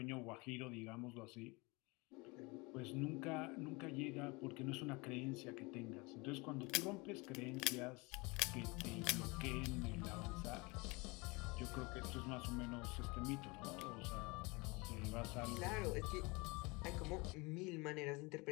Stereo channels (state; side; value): quieter; right; 26.4 dB